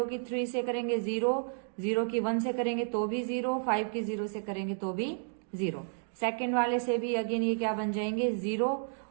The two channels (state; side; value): silent; left; digital silence